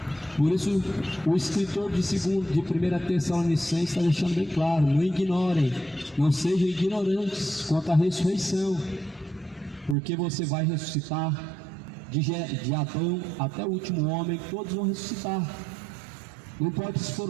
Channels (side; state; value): left; drops out; at 10.0 s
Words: Por isso, o escritor de 1 Tessalonicenses está deixando bem claro: não ignorem, não sejam ignorantes quanto à ressurreição, porque você vai ressuscitar de Adão até o último homem, todos vão ressuscitar. Não importa se